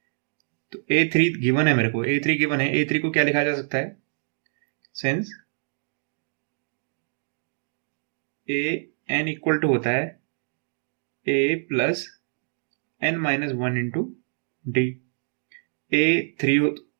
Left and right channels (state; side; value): silent; left; digital silence